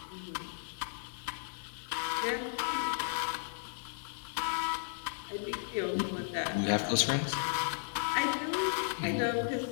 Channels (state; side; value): silent; right; digital silence